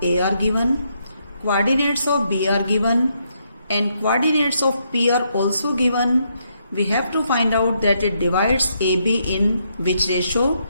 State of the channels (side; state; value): both; inverted; correlation -0.76